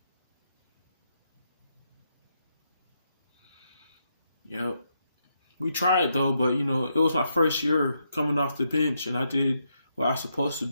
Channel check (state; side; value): inverted; both; correlation -0.80